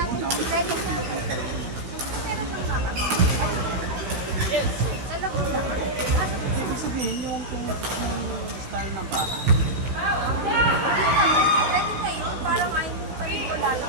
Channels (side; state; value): left; late; 16 ms